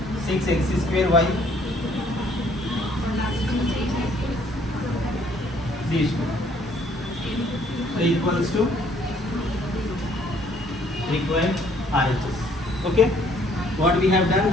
6x square y. These two. So equals to required RHS. Okay. What we have done,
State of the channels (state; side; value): normal; both; correlation 0.63